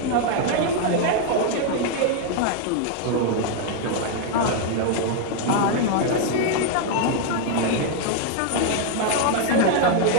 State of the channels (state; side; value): different; both; correlation 0.00